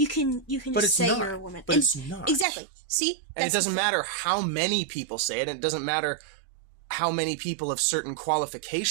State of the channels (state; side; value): drops out; left; at 2.5 s